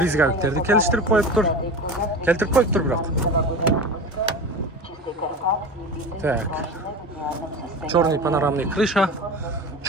келістіріп қойып тұр. Келтіріп қойып тұр бірақ. Так, черный панорамный крыша,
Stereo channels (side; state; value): both; normal; correlation 0.30